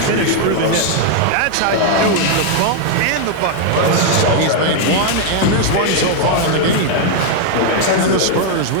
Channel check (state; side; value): different; both; correlation 0.00